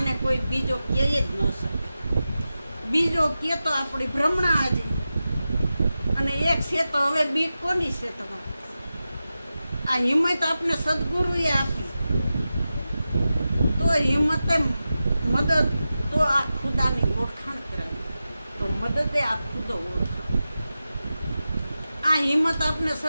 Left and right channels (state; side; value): inverted; both; correlation -0.93